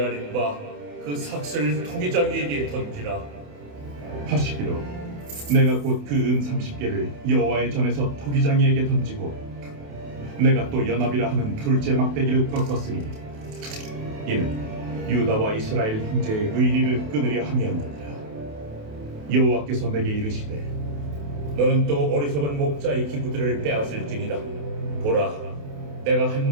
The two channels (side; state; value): left; late; 28 ms